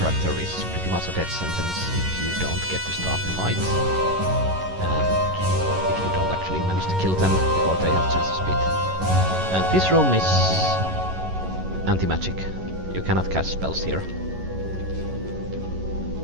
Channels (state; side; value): late; left; 11 ms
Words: is pretty much a death sentence if you don't get to start the fight. And if you don't actually manage to kill them before they have chance to split. And this room is anti-magic. You cannot cast spells here.